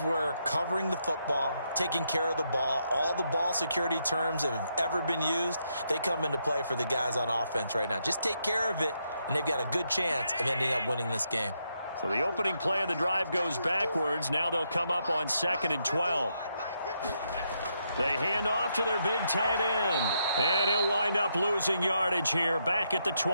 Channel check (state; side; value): inverted; both; correlation -0.79